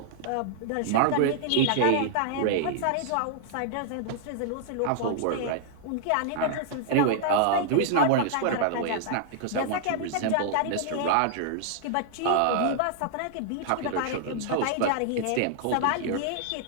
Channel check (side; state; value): both; different; correlation -0.01